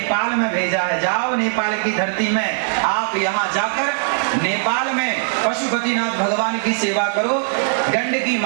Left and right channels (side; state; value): left; silent; 66 dB below the other